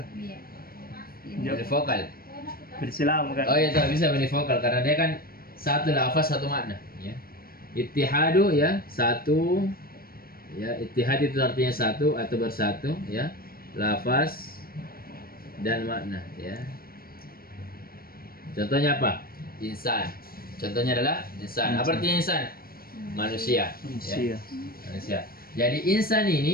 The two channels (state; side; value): late; right; 0.43 ms